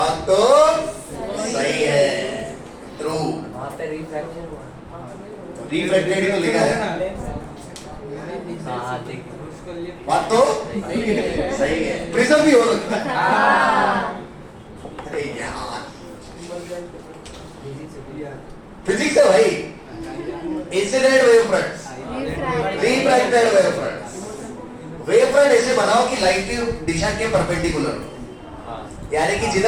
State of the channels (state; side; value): identical; both; correlation 1.00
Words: तो सही है, ट्रू। रिफ्लेक्टेड ही तो लिखा है। बात तो सही है, प्रिज्म भी हो सकता है। अरे यार फिजिक्स है भाई। Incident wave fronts, refracted wave fronts. Wave front ऐसे बनाओ कि लाइट की दिशा के परपेंडिकुलर हो, यानी कि